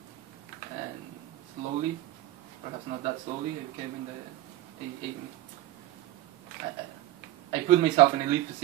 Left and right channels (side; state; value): left; quieter; 15.3 dB